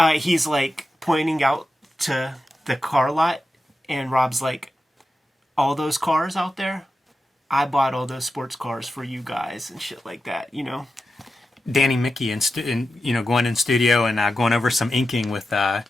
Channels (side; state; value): both; normal; correlation 0.91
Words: he's, like, pointing out to the car lot. And Rob's like, all those cars out there? I bought all those sports cars for you guys and shit like that, Danny Mickey going in studio and going over some inking with